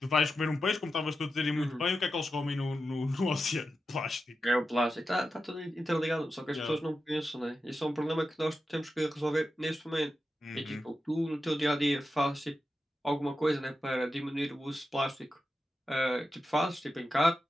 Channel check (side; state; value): both; normal; correlation 0.90